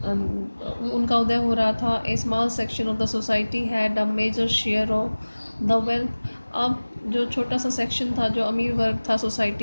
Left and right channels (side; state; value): both; inverted; correlation -1.00